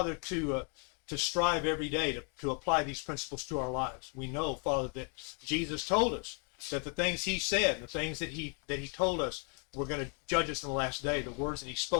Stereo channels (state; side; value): quieter; right; 38.6 dB